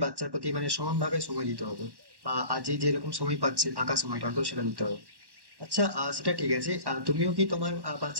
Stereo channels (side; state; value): left; late; 1.1 ms